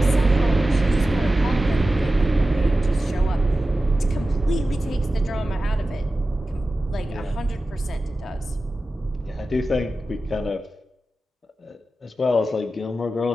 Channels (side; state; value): both; normal; correlation 0.94